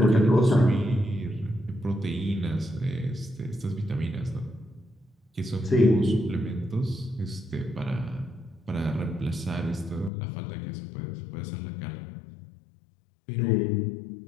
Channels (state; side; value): drops out; right; at 10.1 s